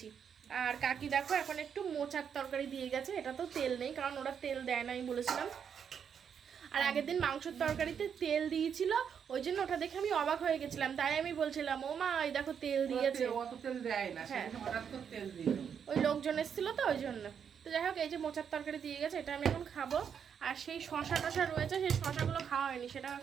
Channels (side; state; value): left; quieter; 7.5 dB